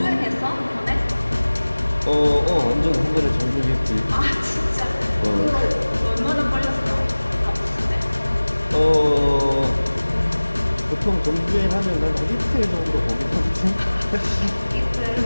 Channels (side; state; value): both; inverted; correlation -1.00